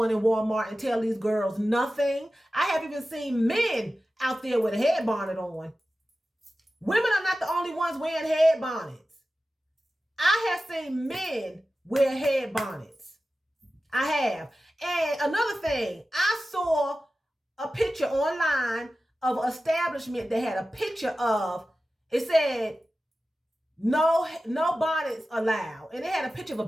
in Walmart and tell these girls nothing. I have even seen men out there with a head bonnet on. Women are not the only ones wearing head bonnets. I have seen men wear head bonnets. I have. And another thing, I saw a picture online of an establishment that had a picture of, it said, no bonnets allowed. And it had a picture of a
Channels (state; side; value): normal; both; correlation 0.94